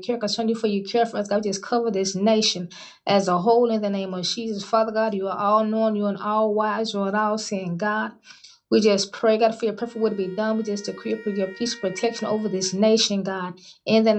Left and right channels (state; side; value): identical; both; correlation 1.00